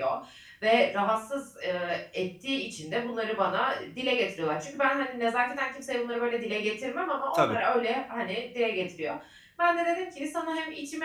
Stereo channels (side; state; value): both; identical; correlation 1.00